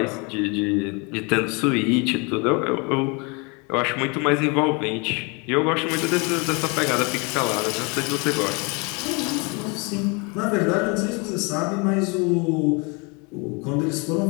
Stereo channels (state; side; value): quieter; right; 30.8 dB